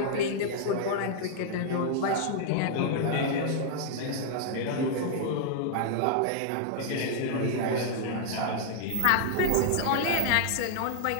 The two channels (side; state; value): both; different; correlation -0.01